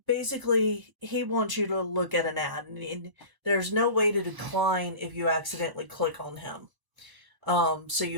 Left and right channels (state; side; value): late; left; 1.0 ms